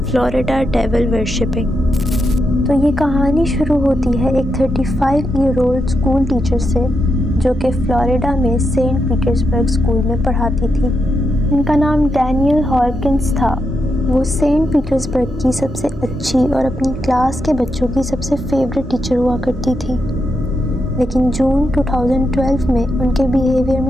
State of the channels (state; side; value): normal; both; correlation 0.84